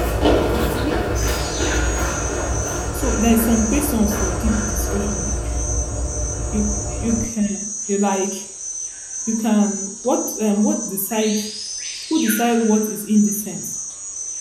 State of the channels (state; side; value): identical; both; correlation 1.00